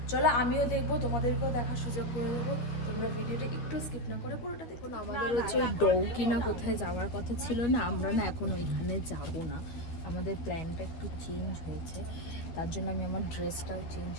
চলো, আমিও দেখবো, তোমাদেরকেও দেখার সুযোগ করে দেবো। তোমরা ভিডিওটা একটু স্কিপ না করে পুরোটা দেখো। আমাদের হচ্ছে ওই ডাউকি না কোথায় যাওয়ার কথা ছিল না, আমরা না এখন ওইখানে যাব না, আমাদের প্ল্যানটা একটু চেঞ্জ হয়েছে। তার জন্য আমি আমার ড্রেসটাও চেঞ্জ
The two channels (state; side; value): late; right; 13 ms